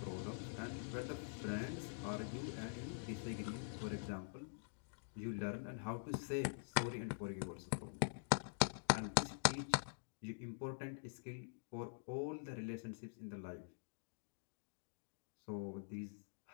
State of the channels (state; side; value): silent; right; digital silence